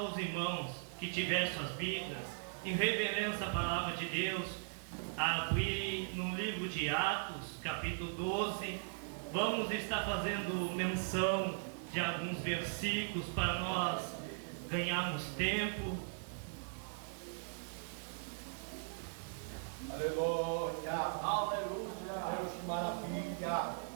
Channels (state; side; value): silent; left; digital silence